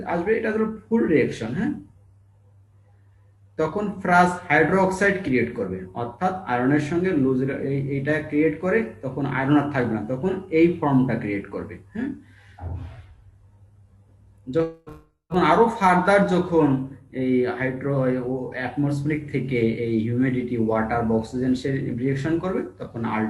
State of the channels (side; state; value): both; identical; correlation 1.00